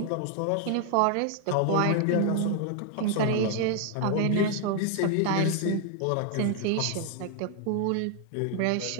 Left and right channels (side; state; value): both; different; correlation 0.00